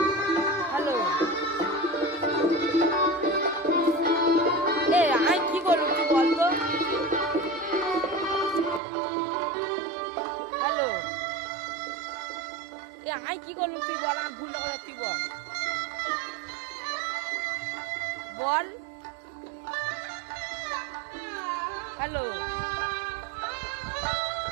হ্যালো, আমি কি করলুম তুই বল তো। হ্যালো, আমি কি করলুম তুই বল। আমার ভুলটা কথা তুই বল বল। হ্যালো,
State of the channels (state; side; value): drops out; left; at 8.8 s